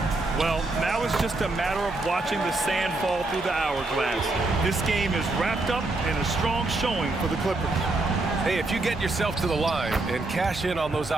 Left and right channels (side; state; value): left; quieter; 3.0 dB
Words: Well, now it's just a matter of watching the sand fall through the hourglass. This game is wrapped up in a strong showing for the Clippers. Hey, if you get yourself to the line and cash in on those